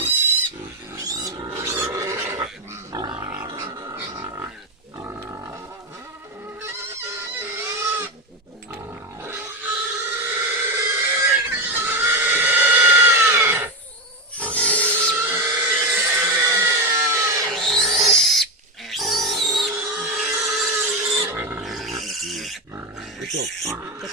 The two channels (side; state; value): both; normal; correlation 0.13